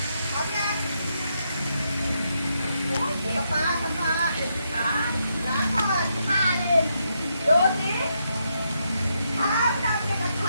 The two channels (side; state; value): both; inverted; correlation -0.80